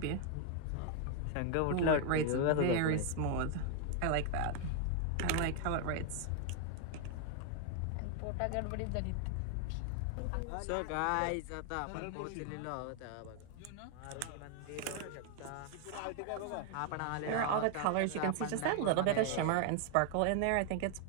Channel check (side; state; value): both; different; correlation 0.00